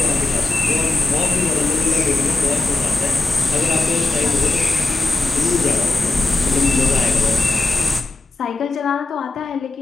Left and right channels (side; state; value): right; quieter; 3.2 dB